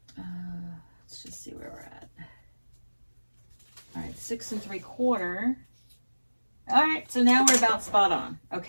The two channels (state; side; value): inverted; both; correlation -1.00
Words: Let's just see where we're at. All right, 6 3/4. All right, so now we're about spot on.